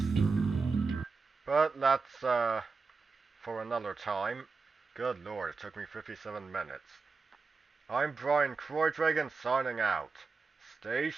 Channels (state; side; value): quieter; left; 4.4 dB